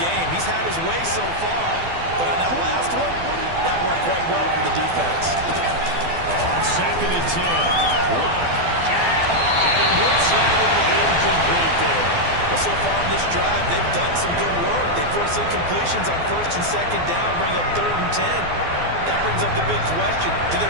game. He's had his way so far, but on that last one, that worked quite well for the defense. On second and 10, Locke. And he whips that one incomplete there. But so far in this drive, they've done some good work. They force incompletions on first and second down, bring up third and 10. That brings up the big question. Do they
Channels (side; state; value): left; late; 12 ms